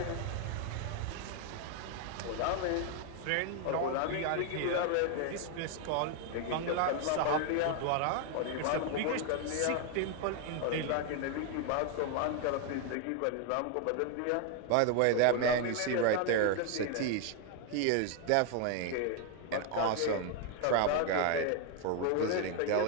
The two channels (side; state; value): both; different; correlation 0.00